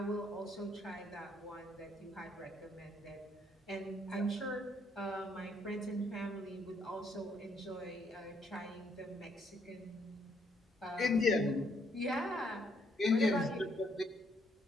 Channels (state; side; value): normal; both; correlation 0.71